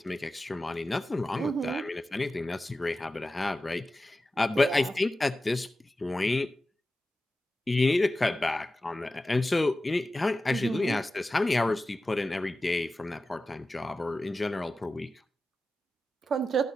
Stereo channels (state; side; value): normal; both; correlation 0.94